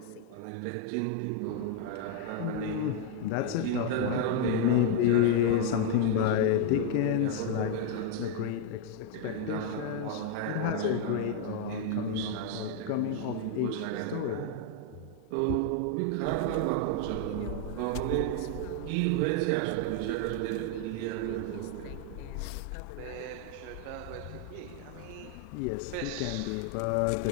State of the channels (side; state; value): both; different; correlation 0.00